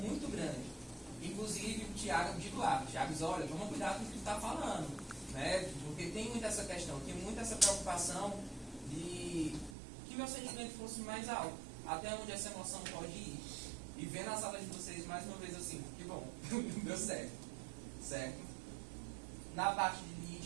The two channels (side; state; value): left; drops out; at 9.8 s